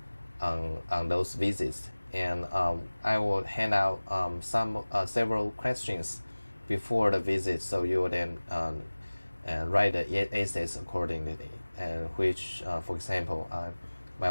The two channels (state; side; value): inverted; both; correlation -1.00